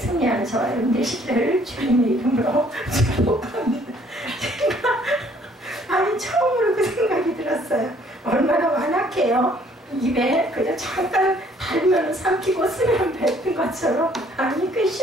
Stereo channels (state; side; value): normal; both; correlation 0.61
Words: 저와 여러분 되시기를 주님의 이름으로 축복합니다. 제가 아니 처음으로 그 생각이 들었어요. 얼마나 완악해요. 입에 그냥 잠깐 달면 삼키고 쓰면 뱉은 것처럼 아니 꽤